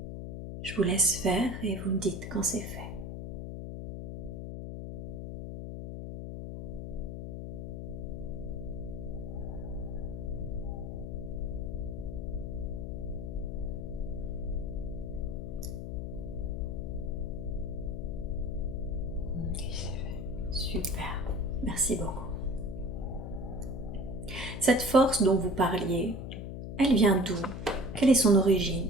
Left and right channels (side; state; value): left; noise; hum, 6 dB below the sound